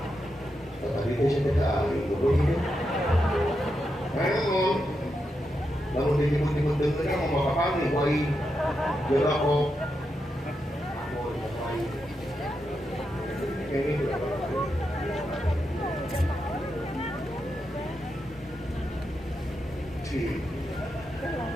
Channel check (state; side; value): normal; both; correlation 0.85